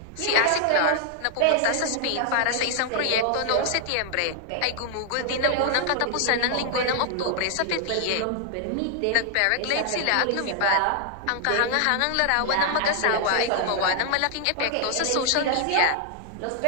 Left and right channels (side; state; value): both; different; correlation 0.00